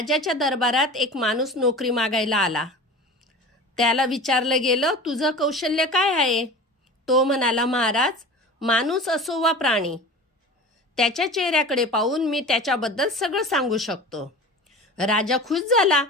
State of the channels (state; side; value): normal; both; correlation 0.36